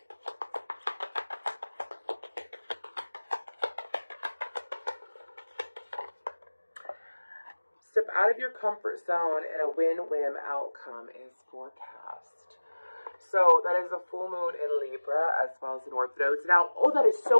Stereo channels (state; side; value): inverted; both; correlation -1.00